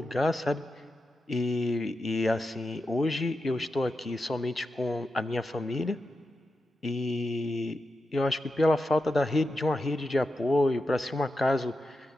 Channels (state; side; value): normal; both; correlation 0.89